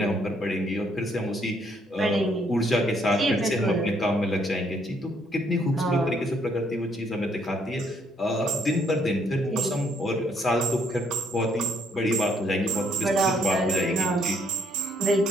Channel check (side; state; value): both; normal; correlation 0.69